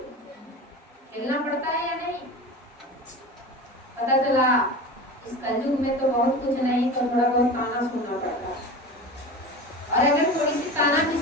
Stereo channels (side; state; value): both; normal; correlation 0.31